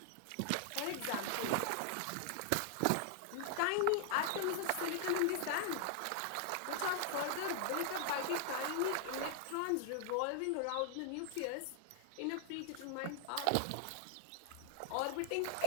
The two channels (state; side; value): different; both; correlation 0.00